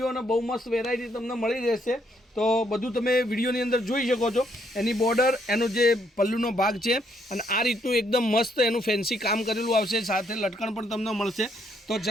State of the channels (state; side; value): normal; both; correlation 0.72